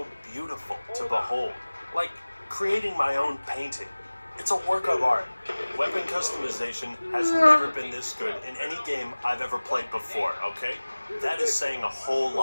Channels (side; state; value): both; inverted; correlation -1.00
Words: beautiful to behold. Like creating my own painting. It's a work of art. Weapon customization has never been this good in any game I've ever played before, okay? That is saying a whole